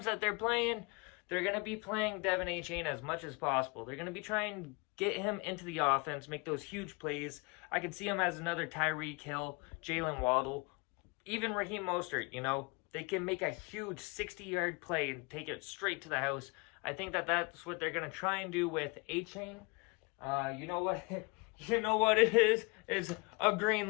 that they're playing, they're going to be playing Devin A. Chain as much as possible. They're going to be trying to get him into the offense, make those huge plays. I could see him as another Tyreek Hill, Jalen Waddle, even Raheem Mostert, you know. They can make a huge 60-yard play and take it straight to the house. I think that that's what they're going to try and do with A-Chain. You know what? You know what it is? It's a green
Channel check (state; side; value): quieter; right; 29.3 dB